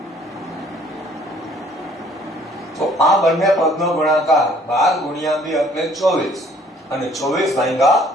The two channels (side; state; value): both; normal; correlation 0.59